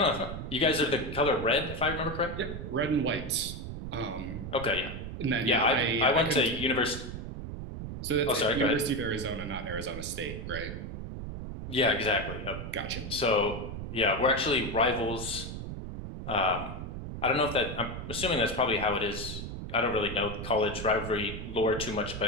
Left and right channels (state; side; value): noise; right; rumble, 7 dB below the sound